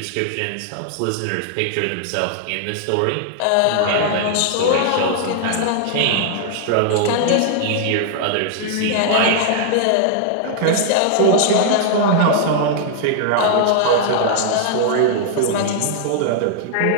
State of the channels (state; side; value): different; both; correlation -0.01